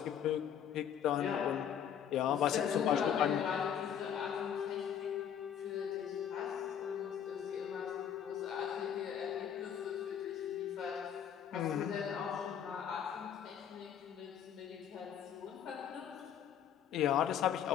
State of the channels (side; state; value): right; quieter; 8.9 dB